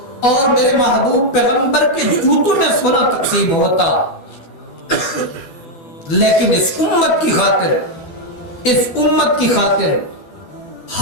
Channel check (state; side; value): late; right; 12 ms